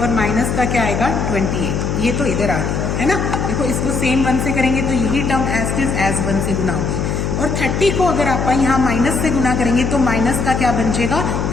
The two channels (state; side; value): noise; left; hum, 1 dB below the sound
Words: और माइनस का क्या आएगा 28। ये तो इधर आ गई है ना। देखो इसको सेम 1 से करेंगे तो यही टर्म एज इज एज 1 से गुना होगी। और 30 को अगर आप यहाँ माइनस से गुना करेंगे तो माइनस का क्या बन जाएगा